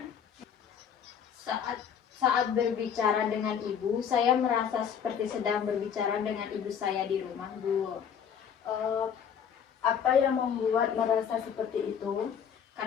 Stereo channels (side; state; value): right; quieter; 7.9 dB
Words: Saat saat berbicara dengan ibu, saya merasa seperti sedang berbicara dengan ibu saya di rumah, Bu. Eh, apa yang membuat merasa seperti itu?